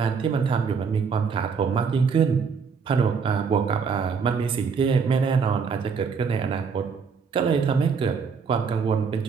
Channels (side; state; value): left; quieter; 5.7 dB